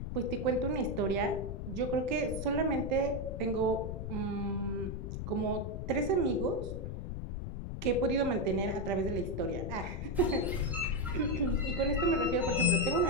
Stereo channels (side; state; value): left; noise; rumble, 5 dB below the sound